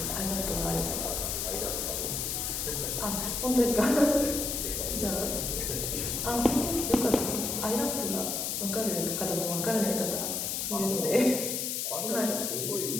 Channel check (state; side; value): noise; left; hiss, 1 dB below the sound